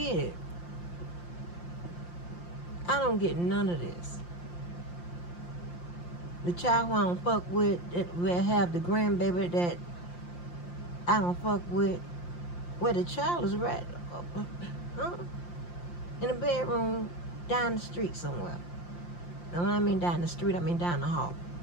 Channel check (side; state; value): right; late; 5.7 ms